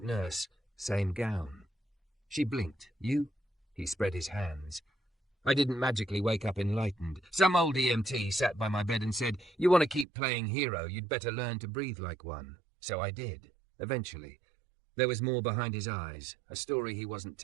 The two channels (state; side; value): drops out; left; at 10.1 s